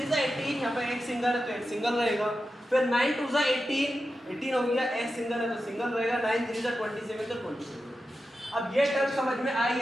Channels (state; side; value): normal; both; correlation 0.91